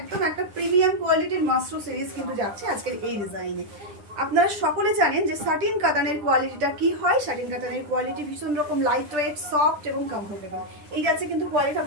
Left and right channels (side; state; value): left; late; 10 ms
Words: একটা প্রিমিয়াম কোয়ালিটির মাস্টার সিরিজ কিন্তু যাচ্ছে আজকের এই ডিজাইনে। আপনারা সকলে জানেন যে সাটিন কাতানের কোয়ালিটিটা কি হয়। সাটিন কাতানের কোয়ালিটি ভীষণ রকম লাইট ওয়েট, সফট এবং কমফোর্টেবল। এই যাচ্ছে কিন্তু কোয়ালিটি